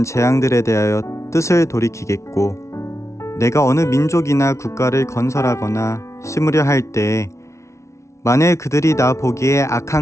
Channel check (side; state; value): right; late; 0.14 ms